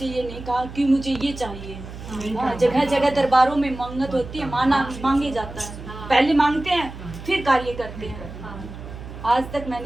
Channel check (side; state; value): right; noise; hum, 12 dB below the sound